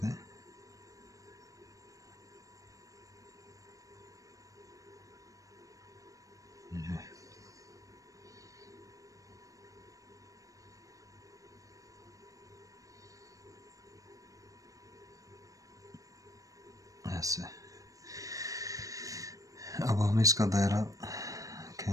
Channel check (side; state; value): left; late; 0.16 ms